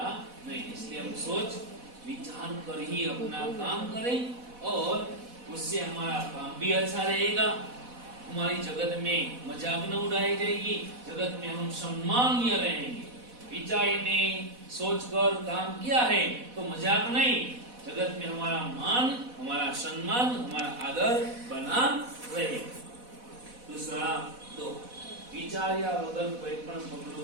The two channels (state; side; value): late; left; 4.1 ms